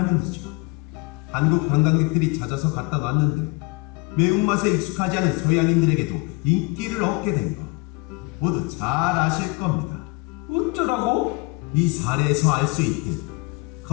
한국 관광객들이 찾아서 갖다 놨는데 매운맛에 익숙하지 않은 서양인들에게도 인기를 얻게 된 것 모두 잘 아실 겁니다. 어쩌라고? 이 사례에서 알 수 있듯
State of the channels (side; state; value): right; quieter; 26.4 dB